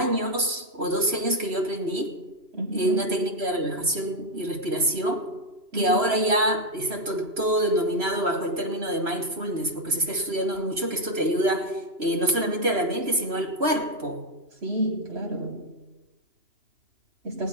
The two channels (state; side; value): late; left; 3.0 ms